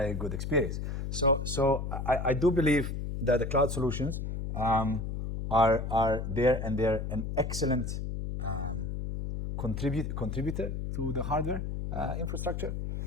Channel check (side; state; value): left; noise; hum, 4 dB below the sound